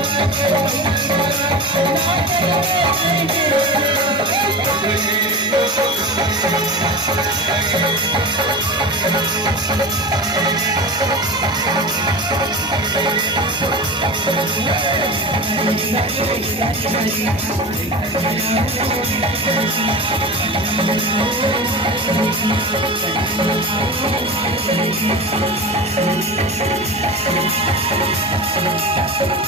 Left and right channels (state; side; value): normal; both; correlation 0.29